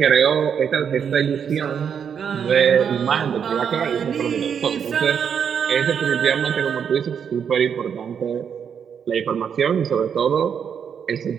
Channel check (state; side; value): quieter; left; 7.5 dB